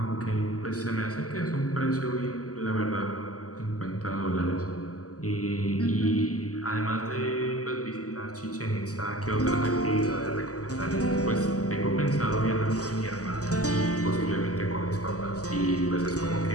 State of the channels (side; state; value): right; late; 0.66 ms